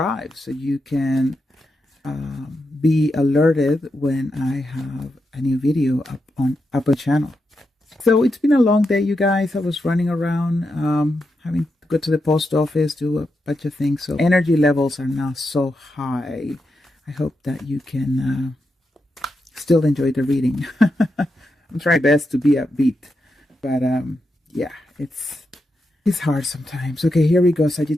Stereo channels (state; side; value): normal; both; correlation 0.86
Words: so you can be alerted when I have a new video up on the channel. So it's been a long day, you guys. I was running around, having to go to the post office, do a bunch of things. So energy levels are not so high. I hope that you can still enjoy the reading. I'm trying my best to be upbeat, but yeah, it's hard sometimes. Okay, here we go,